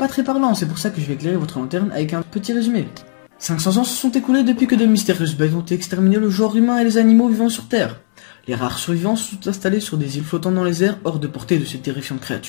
très parlant, c'est pour ça que je vais éclairer votre lanterne avec un petit résumé. 500 ans se sont écoulés depuis que de mystérieuses bêtes ont exterminé le genre humain et les animaux vivant sur Terre. Les rares survivants sont installés sur des îles flottant dans les airs hors de portée de ces terrifiantes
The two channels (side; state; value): right; silent; 68 dB below the other